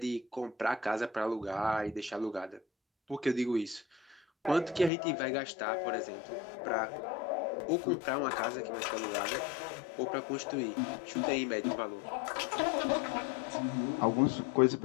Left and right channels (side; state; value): right; drops out; at 4.9 s